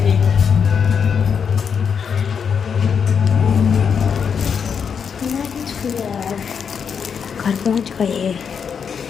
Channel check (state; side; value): quieter; right; 6.8 dB